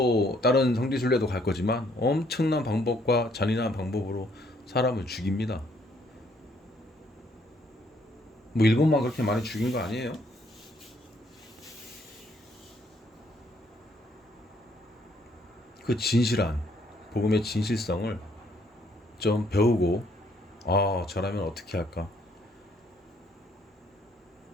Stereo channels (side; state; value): both; normal; correlation 0.67